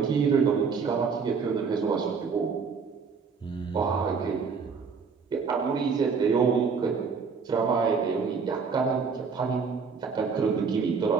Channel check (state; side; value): quieter; left; 5.5 dB